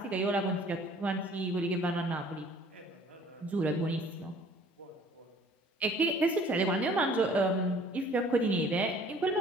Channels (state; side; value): normal; both; correlation 0.54